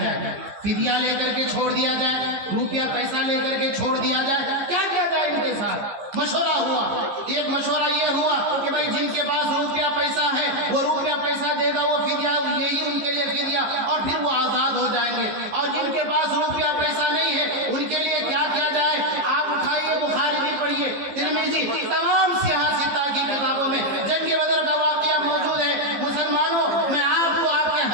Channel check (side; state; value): left; late; 15 ms